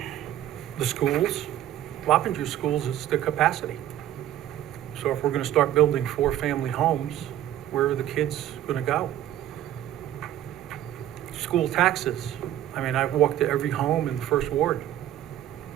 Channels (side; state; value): left; quieter; 12.3 dB